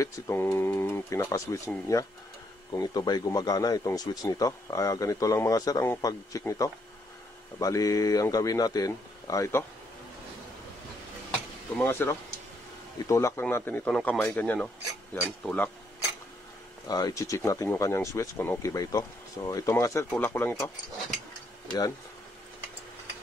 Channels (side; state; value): both; normal; correlation 0.74